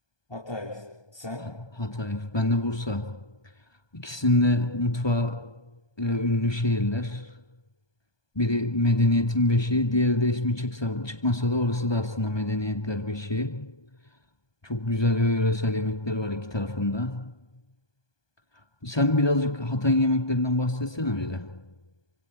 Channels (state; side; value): late; right; 1.2 ms